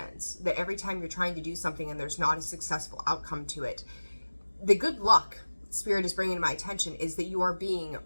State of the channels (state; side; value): inverted; both; correlation -1.00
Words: that every time you're trying to do something and there's not a successful outcome to it, the good luck Spirit is bringing to my attention is that you are being